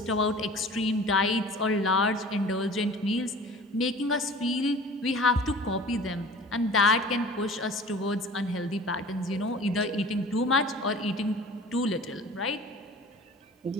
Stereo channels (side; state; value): both; normal; correlation 0.43